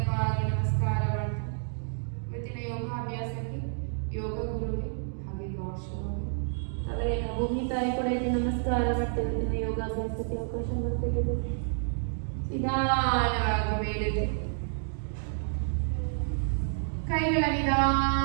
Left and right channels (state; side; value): silent; left; digital silence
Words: ನಮಸ್ಕಾರ ಮಾಡ್ತಾ ಇವತ್ತಿನ ಯೋಗಾಭ್ಯಾಸಕ್ಕೆ ಯೋಗ ಗುರುಗೆ ಹಾಗೆ ಗಾಡ್ ಶಿವಗೆ ತಲೆಯನ್ನು ಭೂಮಿ ತಾಯಿ ಕೂಡ ಇಲ್ಲಿ ನಮಸ್ಕಾರ ಮಾಡ್ತೇವೆ. ದಿನ ಯೋಗಾಭ್ಯಾಸಕ್ಕೆ ಅವಕಾಶ ಮಾಡಿಕೊಟ್ಟಿದೆ. ನಿಧಾನವಾಗಿ ಮೇಲೆದ್ದು ಕೈಗಳ